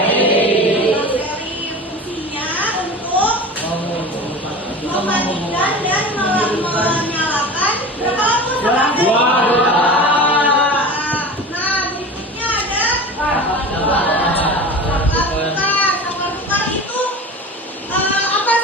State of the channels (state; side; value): normal; both; correlation 0.33